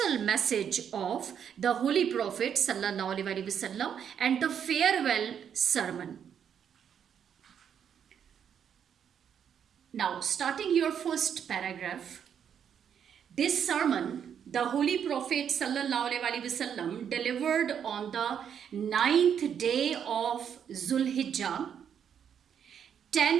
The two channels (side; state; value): left; quieter; 8.3 dB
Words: message of the Holy Prophet Sallallahu Alaihi Wasallam and the farewell sermon. Now, starting your first paragraph, this sermon, the Holy Prophet Sallallahu Alaihi Wasallam delivered on the 9th day of Zulhijjah,